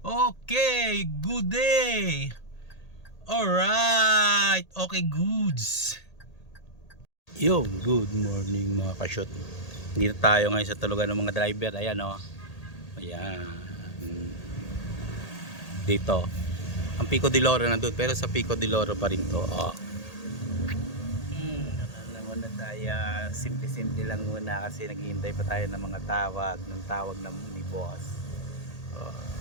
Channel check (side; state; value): right; late; 1.8 ms